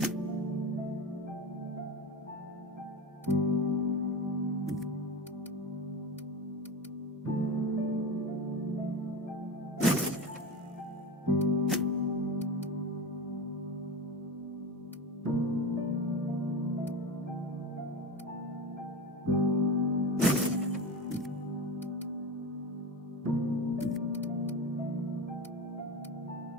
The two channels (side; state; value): both; normal; correlation 0.25